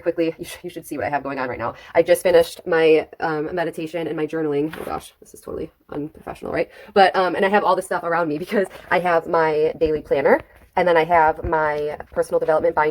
quickly. You should see what I have going on right now. I just finished my meditation and my journaling. Oh gosh, this is totally unprofessional, right? But and I have all this stuff around me because I have my daily planner, and then I have my personal development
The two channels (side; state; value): both; identical; correlation 1.00